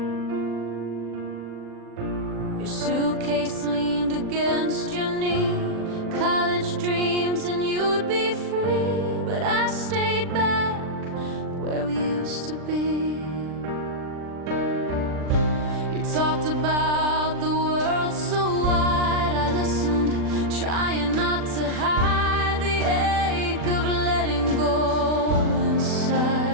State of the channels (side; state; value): left; late; 39 ms